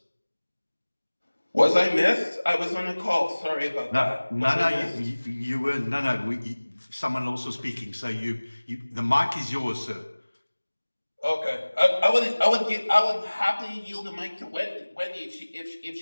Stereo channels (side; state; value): both; inverted; correlation -1.00